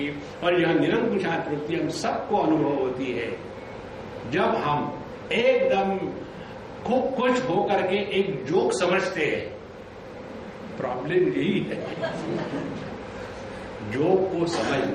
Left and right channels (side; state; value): both; identical; correlation 1.00